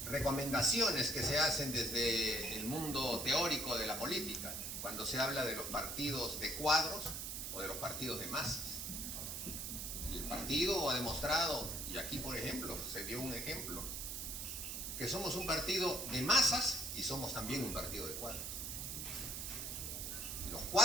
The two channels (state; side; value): noise; right; hiss, 4 dB below the sound